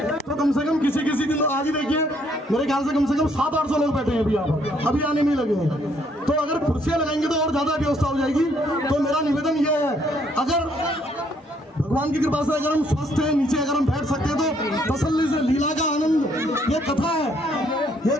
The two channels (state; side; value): normal; both; correlation 0.68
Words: तो कम से कम किसी दिन आज ही देखिए मेरे ख्याल से कम 700-800 लोग बैठे हैं अभी यहाँ पर, अभी आने में लगे हैं। तो अगर कुर्सियां लगाएंगे तो और ज्यादा व्यवस्था हो जाएगी। तो मेरा निवेदन यह है अगर भगवान की कृपा से अगर हम स्वस्थ हैं, नीचे अगर हम बैठ सकते हैं तो तसल्ली से लीला का आनंद, ये कथा है, ये